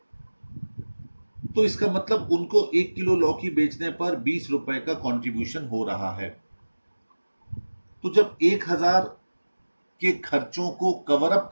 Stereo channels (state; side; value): inverted; both; correlation -1.00